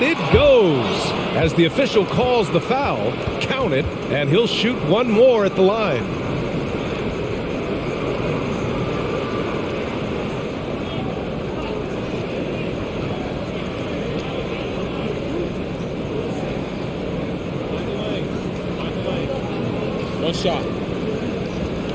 it goes. As the official calls the foul, count it, and he'll shoot one more at the line. One shot.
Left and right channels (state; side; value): identical; both; correlation 1.00